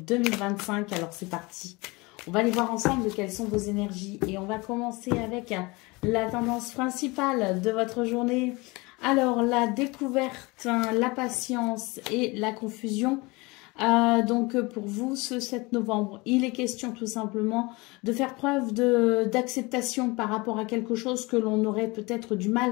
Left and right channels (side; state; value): right; quieter; 25.0 dB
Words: 2025. Alors c'est parti, on va aller voir ensemble quelles sont vos énergies et on va commencer avec la tendance principale de votre journée. Alors la découverte, la patience et la confusion. Donc pour vous ce 7 novembre, il est question tout simplement de faire preuve d'acceptation par rapport à quelque chose que l'on aurait peut-être du mal